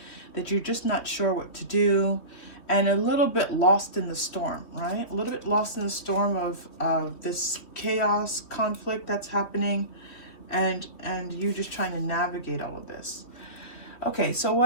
that you're just not sure what to do, and a little bit lost in the storm, right? A little bit lost in the storm of this chaos, conflict that's happening, and you just trying to navigate all of this. Okay, so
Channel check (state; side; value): late; right; 3.1 ms